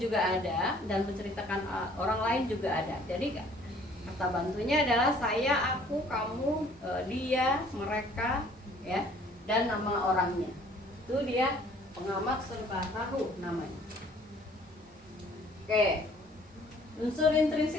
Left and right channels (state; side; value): normal; both; correlation 0.56